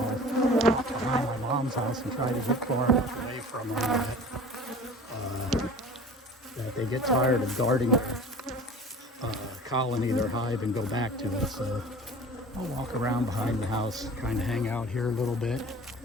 walk behind my mom's house and try to get far enough away from them that they get tired of guarding their colony, their hive, and go back to it. So I'll walk around behind the house, kind of hang out here a little bit,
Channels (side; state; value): both; normal; correlation 0.41